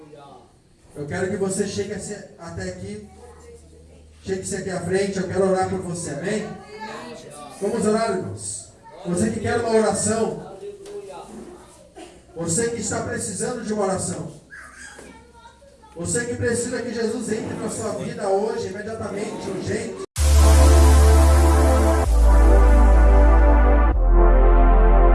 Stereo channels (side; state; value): both; identical; correlation 1.00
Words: Eu quero que você chegue até aqui. Chegue-se aqui à frente, eu quero orar por você, amém? Amém, Jesus. Vamos orar, irmãos. Você que quer uma oração. Você que está precisando de uma oração. Você que precisa que Jesus entre na sua vida hoje, imediatamente, urgente.